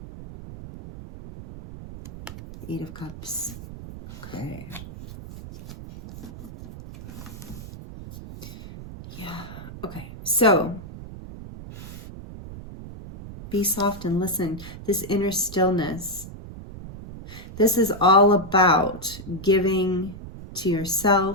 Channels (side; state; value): right; noise; rumble, 13 dB below the sound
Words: 8 of Cups. Okay. Yeah. Okay. So, be soft and listen. This inner stillness. This is all about giving to